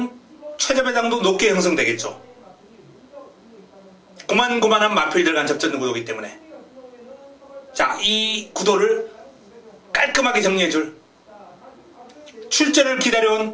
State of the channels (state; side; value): identical; both; correlation 1.00